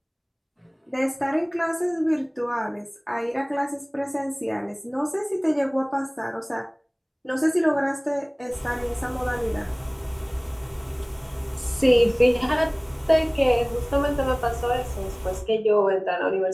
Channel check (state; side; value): identical; both; correlation 1.00